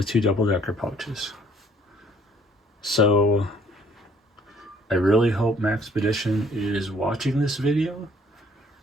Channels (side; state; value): both; normal; correlation 0.61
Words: 2 double-decker pouches. So I really hope Maxpedition is watching this video.